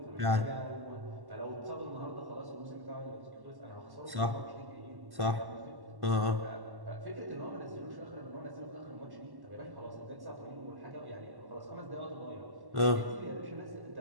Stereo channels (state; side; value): late; left; 1.1 ms